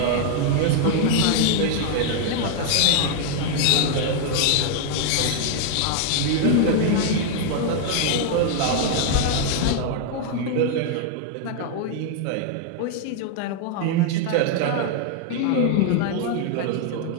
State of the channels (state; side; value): different; both; correlation 0.00